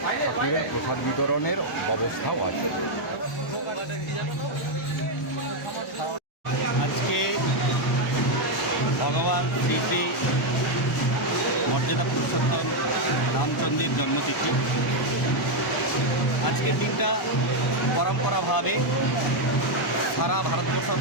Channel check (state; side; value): normal; both; correlation 0.02